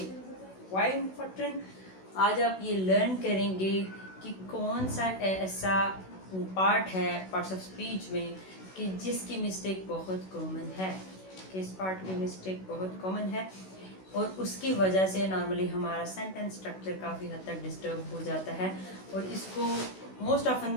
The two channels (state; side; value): late; right; 16 ms